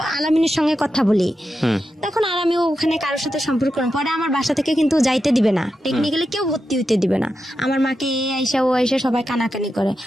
আলামিনের সঙ্গে কথা বলি, তখন আর আমি ওখানে কারোর সাথে সম্পর্ক করব। পরে আমার বাসা থেকে কিন্তু যাইতে দিবে না, টেকনিক্যালি কেউ ভর্তি হইতে দিবে না। আমার মাকে এ আইসা ও আইসা সবাই কানাকানি করে,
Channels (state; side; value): normal; both; correlation 0.89